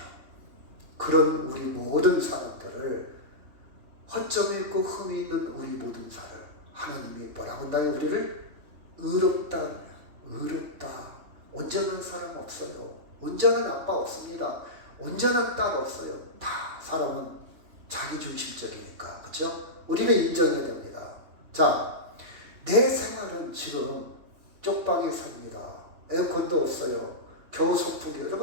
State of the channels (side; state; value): left; late; 2.8 ms